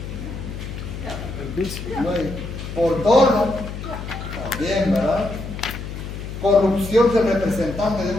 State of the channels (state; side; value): noise; left; hum, 8 dB below the sound